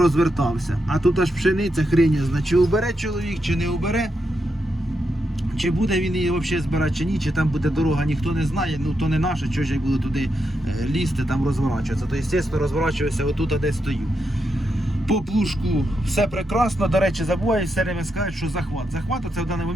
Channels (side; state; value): both; normal; correlation 0.84